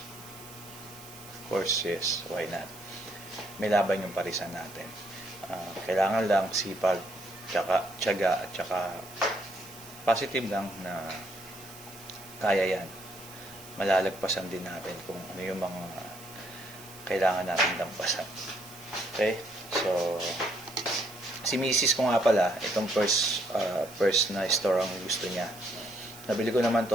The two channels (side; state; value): right; noise; hiss, 18 dB below the sound